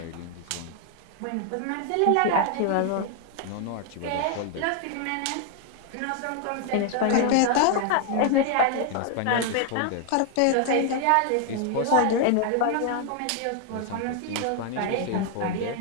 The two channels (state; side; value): different; both; correlation 0.00